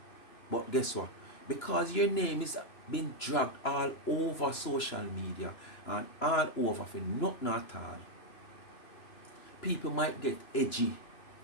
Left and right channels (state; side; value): late; right; 2.9 ms